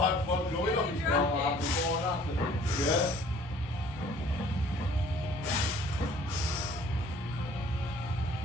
fun going on. Yeah.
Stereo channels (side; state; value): both; normal; correlation 0.54